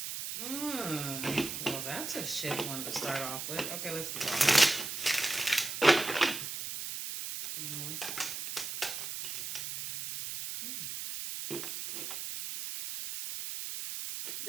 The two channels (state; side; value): noise; right; hiss, 5 dB below the sound